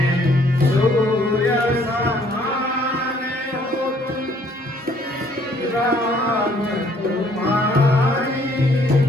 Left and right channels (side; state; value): both; normal; correlation 0.63